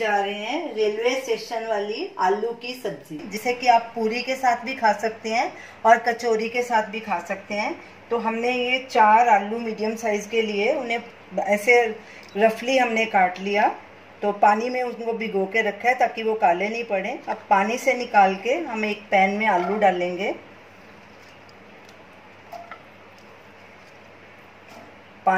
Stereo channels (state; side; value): identical; both; correlation 1.00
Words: रहे हैं रेलवे स्टेशन वाली आलू की सब्जी, जिसे कि आप पूरी के साथ भी खा सकते हैं और कचौरी के साथ भी खा सकते हैं। तो हमने ये 4 आलू मीडियम साइज के लिए उन्हें ऐसे रफली हमने काट लिया। तो पानी में उनको भिगो के रखा है ताकि वो काले नहीं पड़े। अब पानी से निकाल के हम एक पैन में आलू डालेंगे।